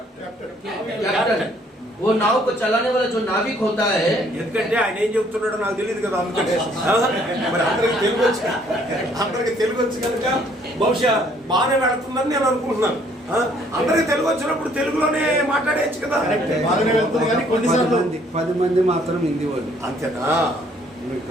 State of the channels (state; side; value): normal; both; correlation 0.63